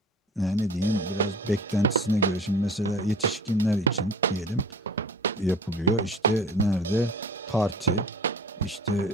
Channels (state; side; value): normal; both; correlation 0.42